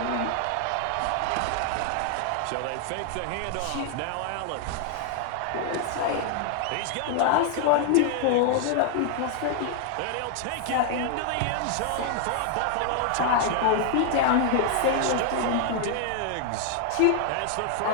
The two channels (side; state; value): both; different; correlation 0.00